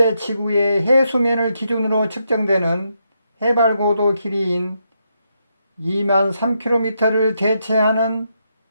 지구의 해수면을 기준으로 측정되는 해발고도 길이인 2만 3km를 대체하는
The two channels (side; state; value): both; inverted; correlation -0.81